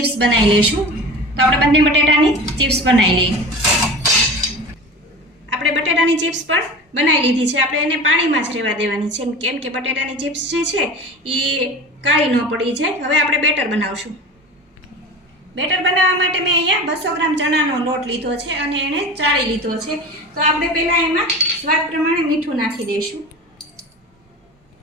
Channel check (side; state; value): both; normal; correlation 0.33